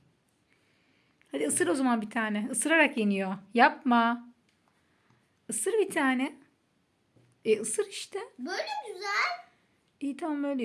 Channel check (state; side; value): identical; both; correlation 1.00